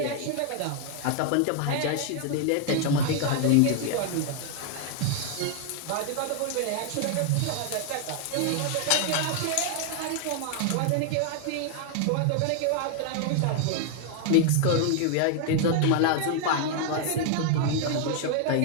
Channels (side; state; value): both; different; correlation 0.00